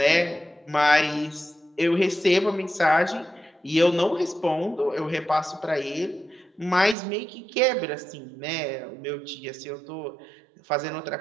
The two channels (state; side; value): drops out; left; at 7.0 s